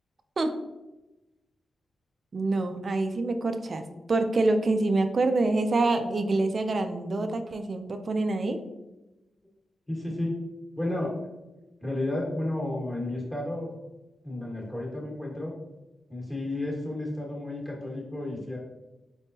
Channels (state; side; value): normal; both; correlation 0.90